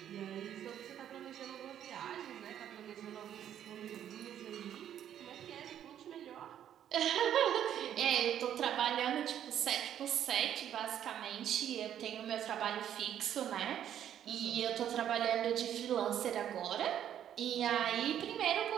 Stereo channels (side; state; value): left; quieter; 10.3 dB